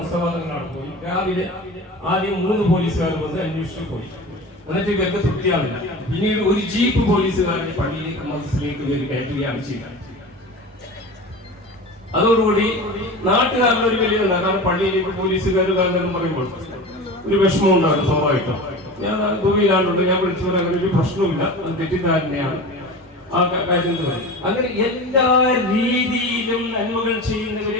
തങ്ങളാണ് പോയി. രാവിലെ ആദ്യം 3 പോലീസുകാർ വന്ന് അന്വേഷിച്ചു പോയി. എന്നിട്ട് ഇവർക്ക് തൃപ്തിയാവില്ല. പിന്നീട് ഒരു ജീപ്പ് പോലീസുകാരനെ പള്ളിയിലേക്ക് മദ്രസയിലേക്ക് ഇവർ കയറ്റുകയാണ് ചെയ്യുന്നത്. അതോടുകൂടി നാട്ടുകാരുടെ ഒരു വലിയ കാരണം പള്ളിയിലേക്ക് പോലീസുകാർ കാരണം പറയുമ്പോൾ ഒരു വിഷമം ഉണ്ടാകും സ്വാഭാവികം. ഞാൻ ദുബൈയിലാണ്ടുണ്ട്, ഞാൻ വിളിച്ചു പറയാൻ അങ്ങനെ ഒരു പ്രശ്നവുമില്ല, അത് തെറ്റിദ്ധാരണയാണ് ആ കാര്യം. അങ്ങനെ എല്ലാ രീതിയിലും നന്മകൾ ചെയ്യുന്നവരെ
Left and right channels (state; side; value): normal; both; correlation 0.32